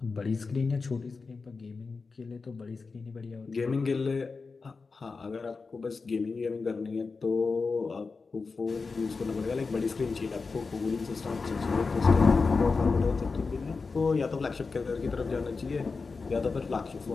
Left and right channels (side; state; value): right; quieter; 4.4 dB